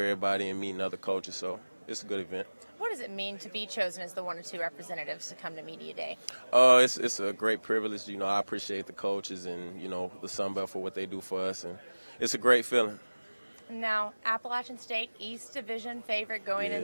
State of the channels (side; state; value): both; inverted; correlation -1.00